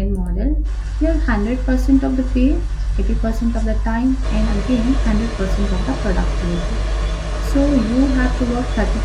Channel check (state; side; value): identical; both; correlation 1.00